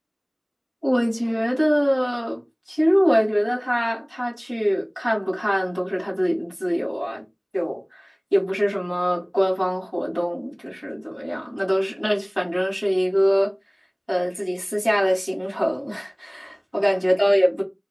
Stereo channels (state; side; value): identical; both; correlation 1.00